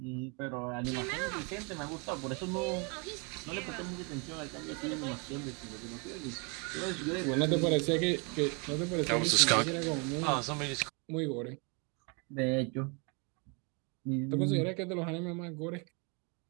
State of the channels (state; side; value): quieter; left; 33.3 dB